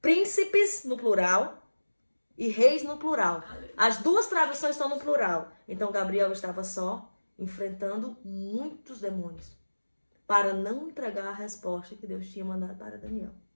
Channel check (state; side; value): inverted; both; correlation -1.00